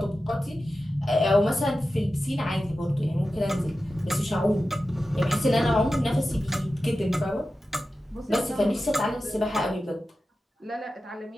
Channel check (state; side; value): normal; both; correlation 0.93